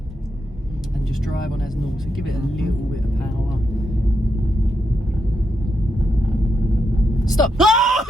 And just drive on as normal, so give it a little bit of power. Stop!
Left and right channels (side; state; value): both; normal; correlation 0.83